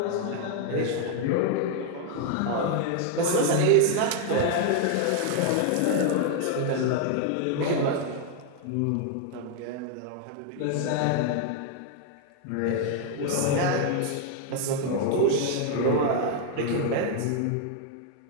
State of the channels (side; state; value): both; different; correlation 0.00